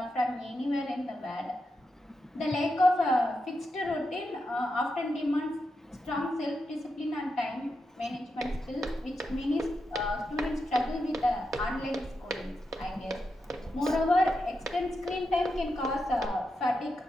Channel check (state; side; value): normal; both; correlation 0.87